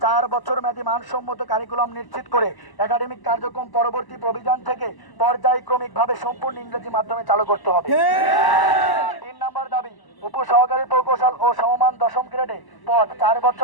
4 বছর মেয়াদী মানসম্মত কারিকুলাম নিশ্চিত করে একাডেমিক কার্যক্রম পরবর্তী প্রভিজন থেকে পর্যায়ক্রমিকভাবে সম্পূর্ণ ইংরেজি মাধ্যমে চালু করতে হবে। 3 নম্বর দাবি উপসহকারী প্রকৌশল ও সমমান 10ম গ্রেডে পদ 4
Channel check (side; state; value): right; late; 1.0 ms